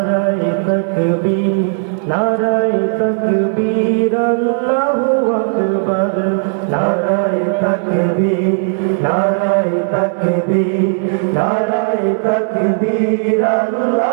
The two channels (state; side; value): silent; left; digital silence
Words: তাকবীর, নারায়ে তাকবীর, আল্লাহু আকবার, নারায়ে তাকবীর, নারায়ে তাকবীর, নারায়ে তাকবীর,